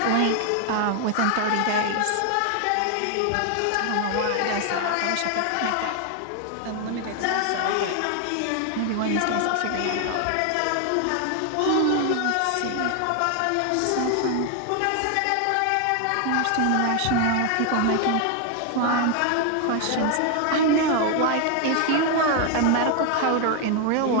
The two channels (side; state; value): both; different; correlation 0.00